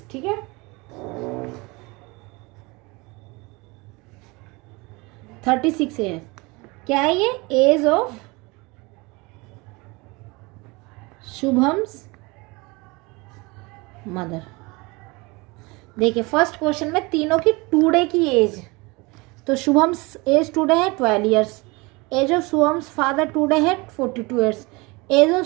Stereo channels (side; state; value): left; quieter; 25.3 dB